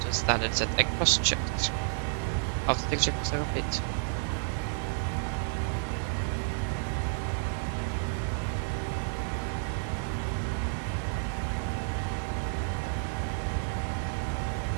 standard set, and cross checked. After take checklist are complete.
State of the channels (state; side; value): silent; left; digital silence